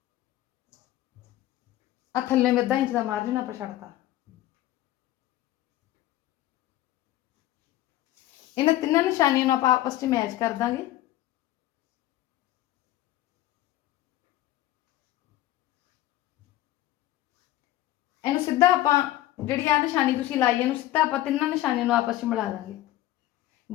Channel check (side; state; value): right; quieter; 14.9 dB